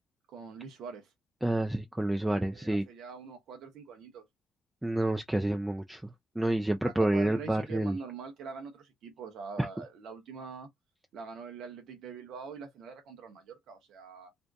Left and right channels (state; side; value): normal; both; correlation 0.96